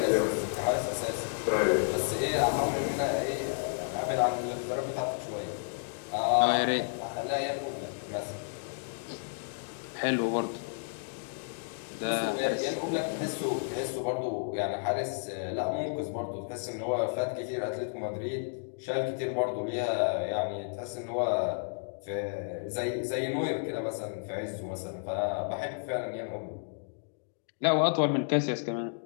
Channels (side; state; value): right; silent; digital silence